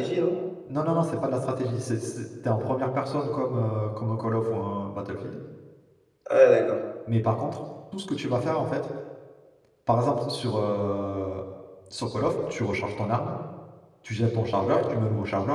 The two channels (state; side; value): identical; both; correlation 1.00